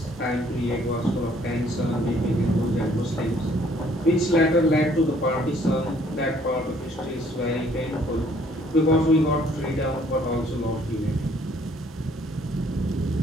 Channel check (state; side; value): normal; both; correlation 0.62